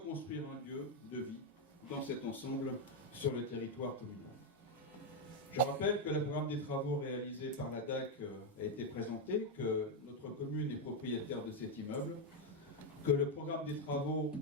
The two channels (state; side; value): normal; both; correlation 0.03